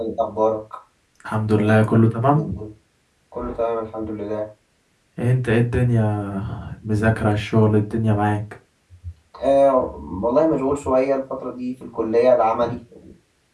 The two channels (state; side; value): identical; both; correlation 1.00